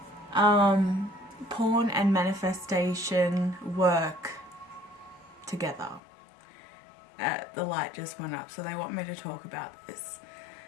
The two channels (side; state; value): right; drops out; at 6.0 s